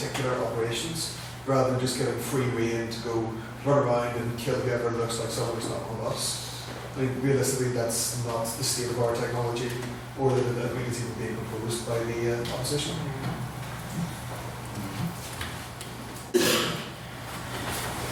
operations, rather than just getting free rein to go run around and kill whoever looks like someone who's not one of us. I mean, realistically, that's not the state of our technology, or that we can see being proposed by the opposition.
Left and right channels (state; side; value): identical; both; correlation 1.00